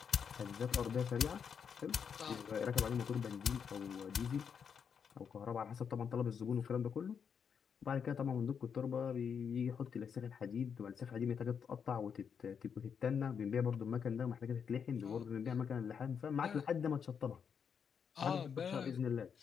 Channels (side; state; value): right; quieter; 7.0 dB